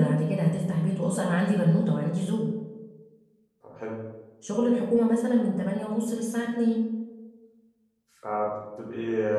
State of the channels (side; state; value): both; identical; correlation 1.00